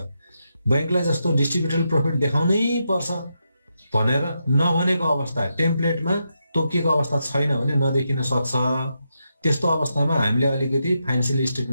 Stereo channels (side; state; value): both; inverted; correlation -0.84